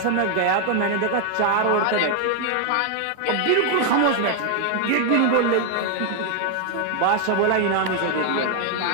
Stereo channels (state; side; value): different; both; correlation 0.00